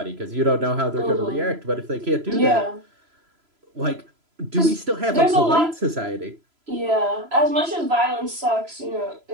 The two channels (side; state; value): left; late; 3.0 ms